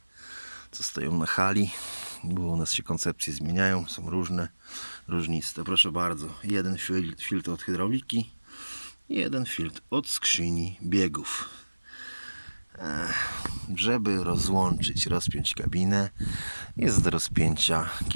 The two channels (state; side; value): inverted; both; correlation -1.00